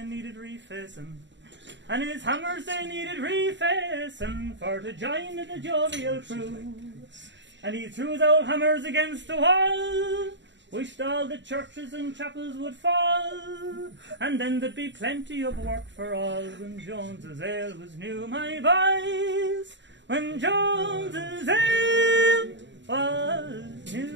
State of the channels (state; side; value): late; left; 0.53 ms